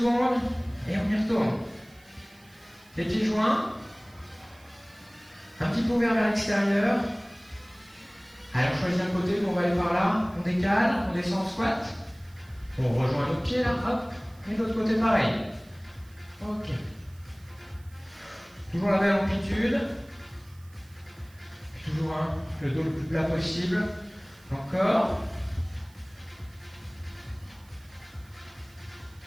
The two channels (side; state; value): right; noise; hiss, 28 dB below the sound